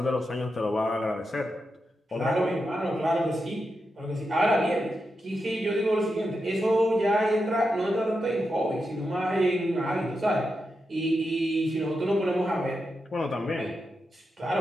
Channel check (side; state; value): both; normal; correlation 0.87